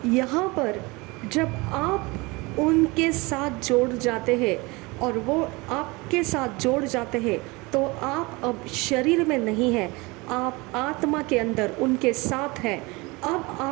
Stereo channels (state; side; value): quieter; left; 24.7 dB